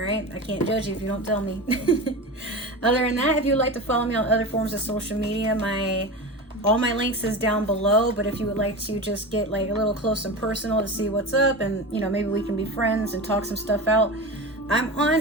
I can't judge you if you don't tell me. Other than that, if you'd like to follow me on other forms of social media, all my links is down below. But if you would like to just get like a little close and personal to see what's up, and you know, maybe we can be friends and talk some stuff out, I'm on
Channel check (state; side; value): normal; both; correlation 0.27